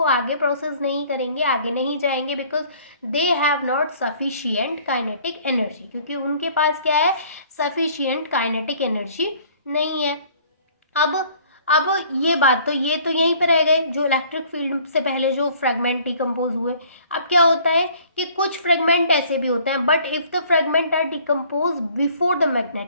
आगे प्रोसेस नहीं करेंगे, आगे नहीं जाएंगे, because they have not sufficient kinetic energy, क्योंकि उनके पास क्या है, सफिशिएंट काइनेटिक एनर्जी नहीं है। अब ये बात तो ये तो यहीं पर रह गए जो इलेक्ट्रिक फील्ड से पहले जो फ्रेगमेंट डिकम्पोज हुए। अब क्या होता है कि कुछ फ्रेगमेंट ऐसे भी होते हैं, but if the fragment are decompose before the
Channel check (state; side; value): inverted; both; correlation -0.55